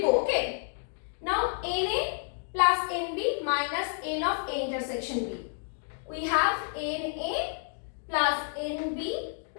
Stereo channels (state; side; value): silent; right; digital silence